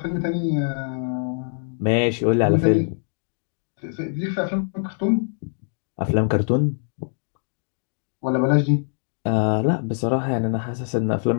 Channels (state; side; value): silent; right; digital silence